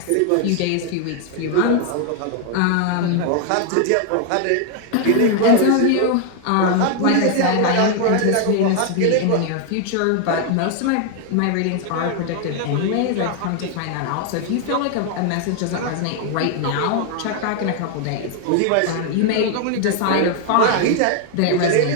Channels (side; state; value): both; different; correlation 0.00